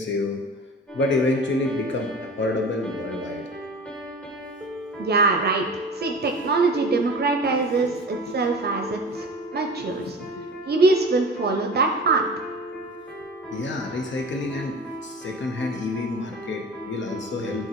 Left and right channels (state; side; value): normal; both; correlation 0.37